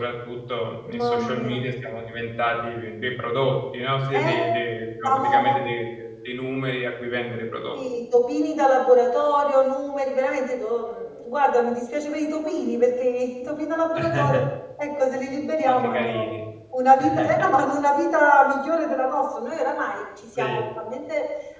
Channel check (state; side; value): identical; both; correlation 1.00